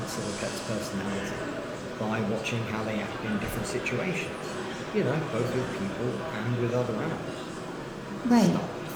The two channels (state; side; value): identical; both; correlation 1.00